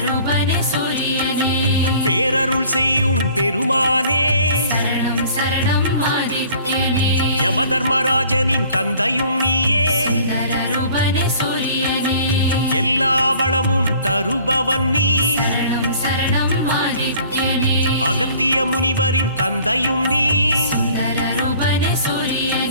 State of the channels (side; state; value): both; inverted; correlation -0.52